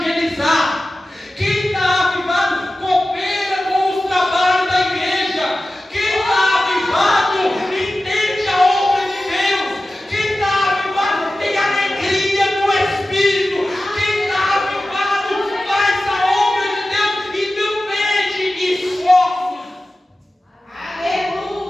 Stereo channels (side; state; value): both; normal; correlation 0.95